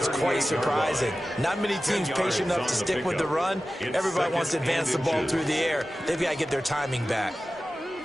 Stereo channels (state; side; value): normal; both; correlation 0.95